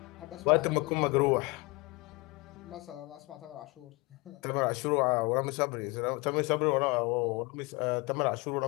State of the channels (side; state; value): right; quieter; 25.6 dB